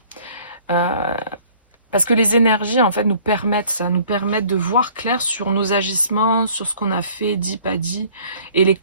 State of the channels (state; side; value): inverted; both; correlation -0.54